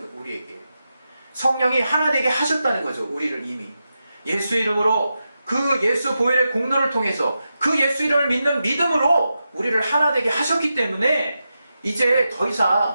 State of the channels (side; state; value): both; inverted; correlation -0.89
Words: 우리에게 성령이 하나 되게 하셨다는 거죠. 우리를 이미 예수 이름으로, 그 예수 보혈의 공로를 통해서 그 예수 이름을 믿는 믿음으로 우리를 하나 되게 하셨기 때문에 이제 더